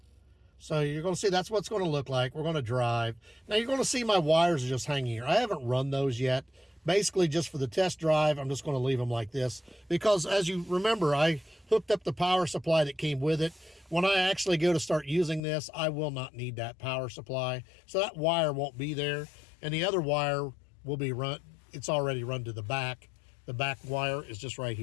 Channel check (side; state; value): right; drops out; at 15.4 s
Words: So you're going to see that's what it's going to look like. We're going to drive. Now you're going to see my wires are just hanging here. I haven't run those yet. Basically just for the test drive, I'm just going to leave them like this, because as you remember, I hooked up the power supply that came with it. When I actually go to start using this, I will not need that power supply. So that wire won't be there, and the other wire will be run. It's already run to the back. The back wire is just right